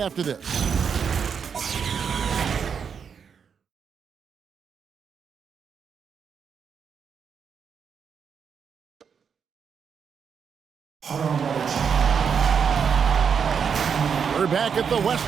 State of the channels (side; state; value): left; quieter; 6.8 dB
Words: this. We're back at the